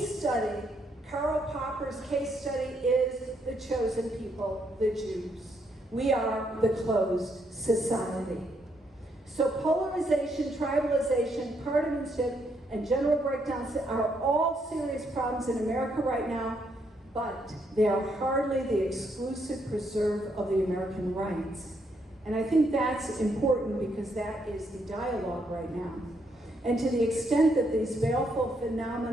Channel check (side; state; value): both; normal; correlation 0.75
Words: study, Karl Popper's case study, is the chosen people, the Jews. We are the closed society. So polarization, tribalization, partisanship, and general breakdowns are all serious problems in America right now, but they are hardly the exclusive preserve of the American rights. And I think that's important because that is the dialogue right now. And to the extent that these baleful